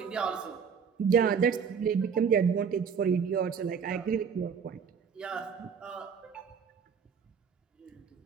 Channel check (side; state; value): left; quieter; 6.5 dB